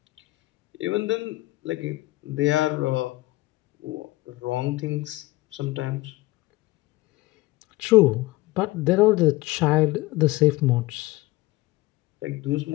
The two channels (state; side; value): quieter; right; 19.7 dB